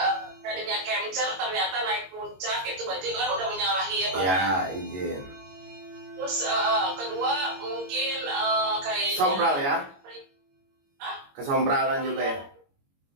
tadinya camcer, ternyata naik puncak itu berarti kan udah menyalahi ya bang. Ya, izin. Terus kedua mungkin kayaknya Sompral ya? Hah? Kesompralan juga ya?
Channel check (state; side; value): late; left; 22 ms